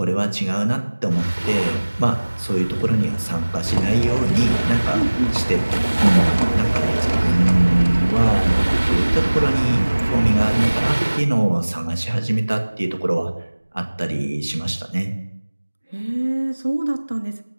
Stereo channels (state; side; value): inverted; both; correlation -1.00